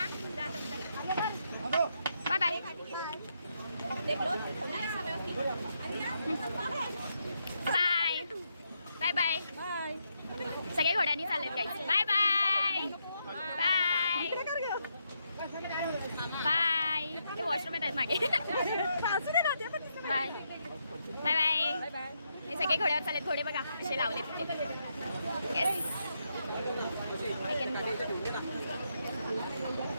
Bye bye bye bye bye. सगळे घोड्यांनी चाललेत काही. Bye bye bye bye. ते वॉशरूम आहेत मागे. Bye bye bye. हे सगळे घोड्यावर चाललेत. घोडे बघा असे लावलेत. येस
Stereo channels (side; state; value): both; inverted; correlation -0.80